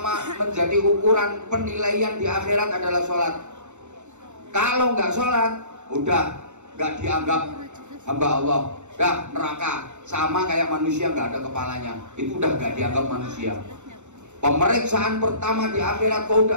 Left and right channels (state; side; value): late; left; 0.84 ms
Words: menjadi ukuran penilaian di akhirat adalah sholat. Kalau nggak sholat, udah nggak dianggap hamba Allah. Dah neraka, sama kayak manusia nggak ada kepalanya, itu udah nggak dianggap manusia. Pemeriksaan pertama di akhirat, kau